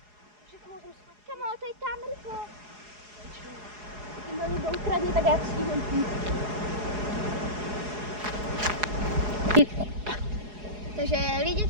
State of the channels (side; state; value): left; late; 4.8 ms